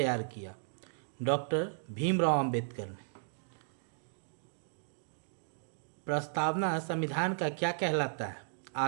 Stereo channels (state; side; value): silent; left; digital silence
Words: किया? डॉक्टर भीमराव अंबेडकर ने। प्रस्तावना संविधान का क्या कहलाता है?